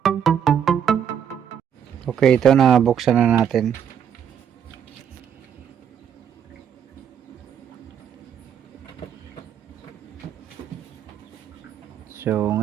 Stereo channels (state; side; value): quieter; left; 8.5 dB